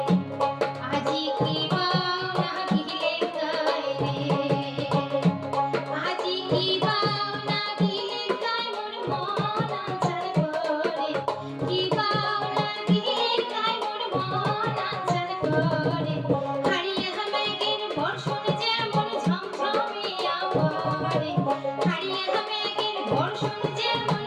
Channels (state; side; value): identical; both; correlation 1.00